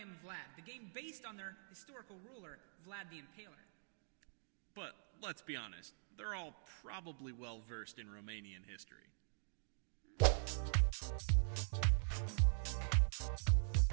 Vlad, the game based on their historical ruler, Vlad the Impaler. But let's be honest, they're all probably well versed in Romanian history.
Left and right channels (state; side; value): silent; left; digital silence